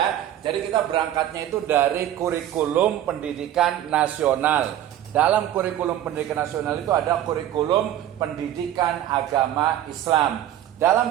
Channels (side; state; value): left; quieter; 11.9 dB